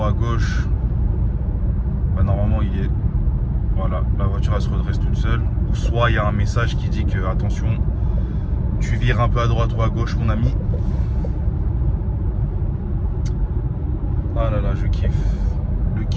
à gauche, bah normalement il est, voilà, la voiture elle se redresse toute seule. Ou soit il y a un message qui dit que attention, tu vires un peu à droite ou à gauche mon ami. Ah là là, je kiffe, le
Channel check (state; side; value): identical; both; correlation 1.00